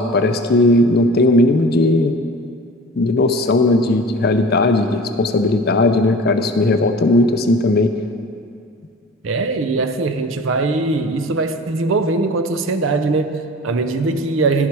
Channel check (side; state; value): both; normal; correlation 0.40